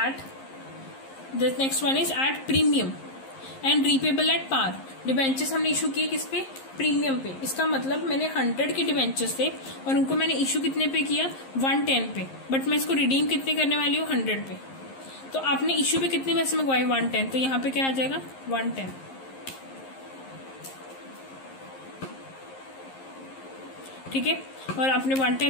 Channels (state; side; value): late; right; 11 ms